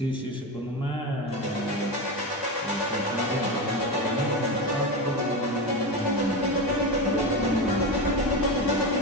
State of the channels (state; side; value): normal; both; correlation 0.19